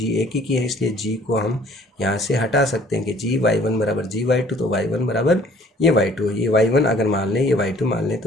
एकीकी है इसलिए g को हम यहाँ से हटा सकते हैं कि gy1 बराबर gy2 तो y1 बराबर ये y2, ये y1 अगर मान लें, ये y2 मान लें,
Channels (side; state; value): both; normal; correlation 0.56